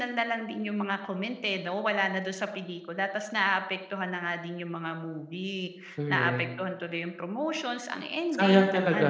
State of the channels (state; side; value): identical; both; correlation 1.00